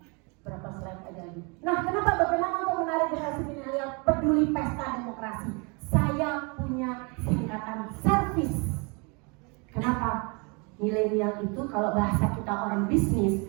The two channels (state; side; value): quieter; left; 31.6 dB